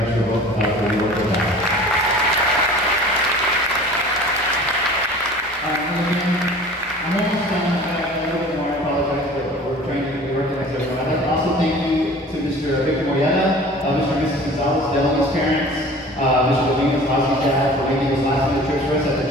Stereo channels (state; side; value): normal; both; correlation 0.44